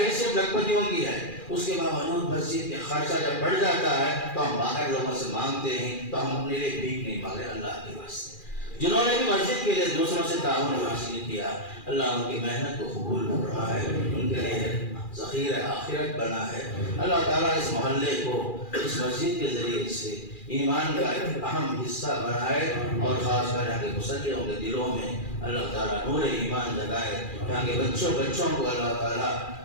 لکھپتیوں کی ہے، اس کے باوجود مسجد کے خرچہ جب بڑھ جاتا ہے تو ہم باہر لوگوں سے مانگتے ہیں، تو ہم اپنے لیے بھیک نہیں مانگے اللہ کے واسطے۔ جنہوں نے بھی مسجد کے لیے دوسروں سے تعاون حاصل کیا، اللہ ان کی محنت کو قبول فرمائے، ان کے لیے ذخیرہ آخرت بنا ہے۔ اللہ تعالیٰ اس محلے کو اس مسجد کے ذریعے سے ایمان کا ایک اہم حصہ بنائے، اور خاص کر یہاں کے مسلمانوں کے دلوں میں اللہ تعالیٰ نور ایمان جگائے، یہاں کے بچوں کو اللہ تعالیٰ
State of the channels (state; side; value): late; right; 2.4 ms